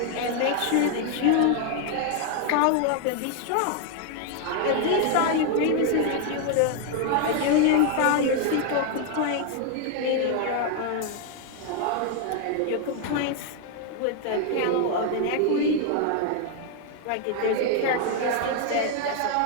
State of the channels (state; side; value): different; both; correlation 0.00